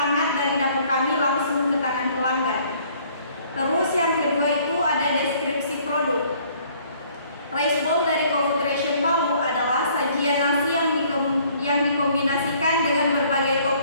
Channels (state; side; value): inverted; both; correlation -0.59